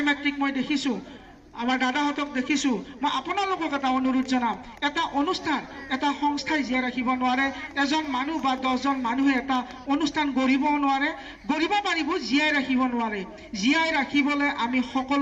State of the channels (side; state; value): both; identical; correlation 1.00